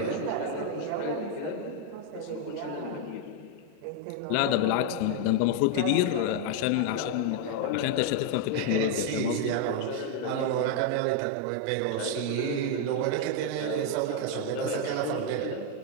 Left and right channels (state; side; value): different; both; correlation 0.01